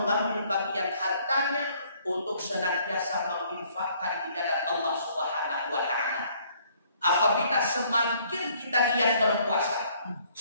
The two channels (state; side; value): inverted; both; correlation -0.62